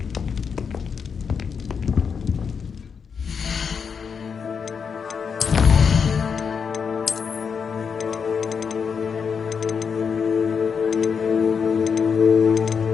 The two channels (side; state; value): right; quieter; 6.3 dB